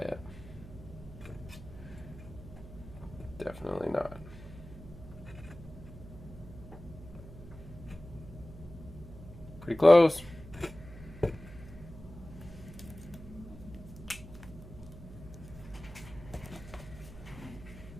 yet. Definitely not. Pretty close.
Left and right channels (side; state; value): right; noise; hum, 14 dB below the sound